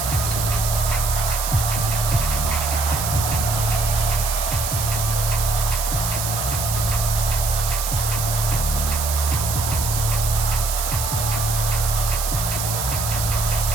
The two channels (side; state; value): right; noise; hiss, 3 dB below the sound